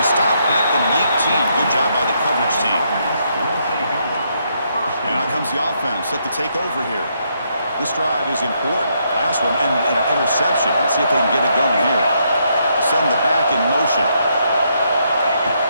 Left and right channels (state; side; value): inverted; both; correlation -0.76